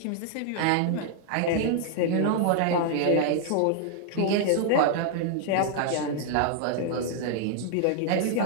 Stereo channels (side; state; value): both; different; correlation 0.00